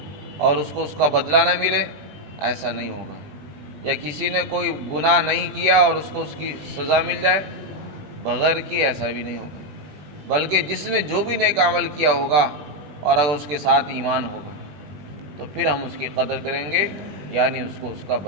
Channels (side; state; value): left; late; 21 ms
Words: اور اس کو اس کا بدلہ نہ ملے، ایسا نہیں ہوگا، یا کسی نے کوئی گناہ نہیں کیا اور اس کو اس کی سزا مل جائے بغیر کی، ایسا بھی نہیں ہوگا، بلکہ جس نے جو بھی نیک عمل کیا ہوگا اور اگر اس کے ساتھ ایمان ہوگا تو پھر ہم اس کی قدر کریں گے، یعنی اس کو اس کا